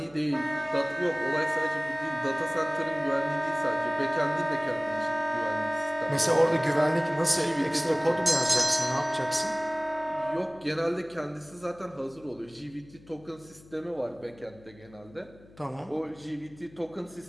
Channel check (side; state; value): left; noise; hum, 24 dB below the sound